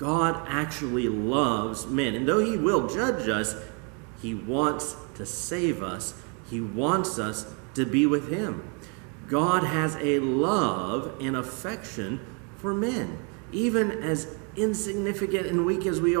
actually loves men. And though he will judge us, he wants to save us. He wants us to be with him. God has a love and affection for men. Even as insignificant and weak as we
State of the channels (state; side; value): quieter; left; 36.0 dB